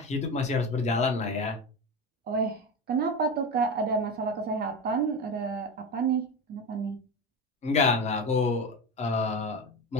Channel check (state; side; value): normal; both; correlation 0.22